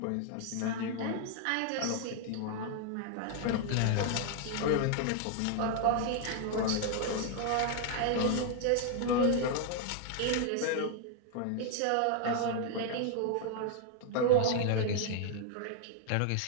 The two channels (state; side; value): different; both; correlation 0.00